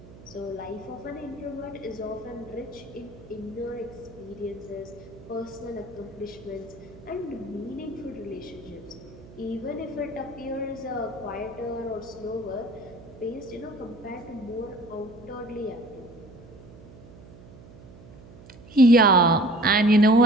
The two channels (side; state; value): right; noise; hum, 19 dB below the sound